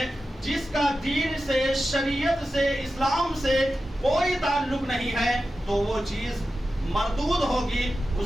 جس کا دین سے، شریعت سے، اسلام سے کوئی تعلق نہیں ہے، تو وہ چیز مردود ہوگی،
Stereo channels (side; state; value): both; normal; correlation 0.92